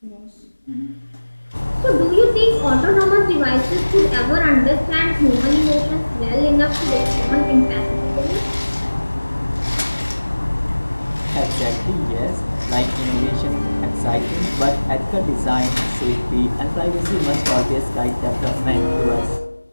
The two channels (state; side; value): inverted; both; correlation -1.00